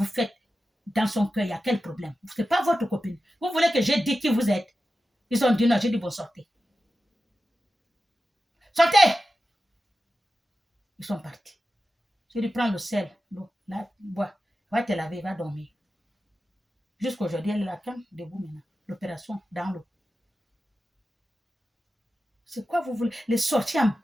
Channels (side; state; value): both; normal; correlation 0.93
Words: faites dans son cœur? Il y a quel problème? Ce n'est pas votre copine. Vous voulez que j'ai dit qui vous êtes? Ils ont dit non, j'ai dit bon, sortez. Sortez! Ils sont partis. J'ai dit prends le sel, l'eau, là, bois. Va te laver, va dormir. Jusqu'aujourd'hui, elle est là, quand debout maintenant. L'opération dans l'eau. C'est quoi vous voulez? Les sorciers